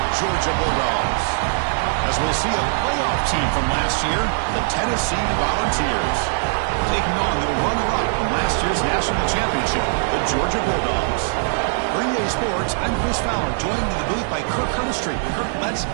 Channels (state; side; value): silent; left; digital silence